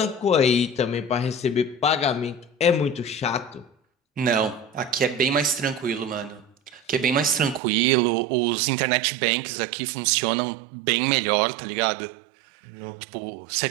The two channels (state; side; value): drops out; left; at 7.6 s